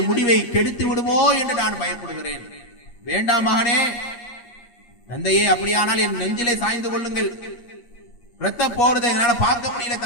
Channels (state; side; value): late; right; 8.5 ms